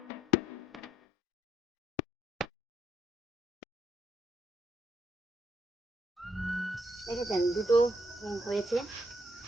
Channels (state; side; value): normal; both; correlation 0.74